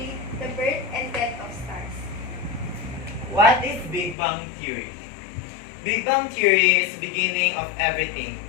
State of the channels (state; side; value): drops out; right; at 4.2 s